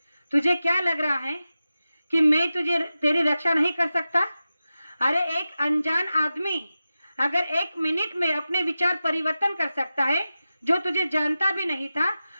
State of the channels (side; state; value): both; inverted; correlation -0.93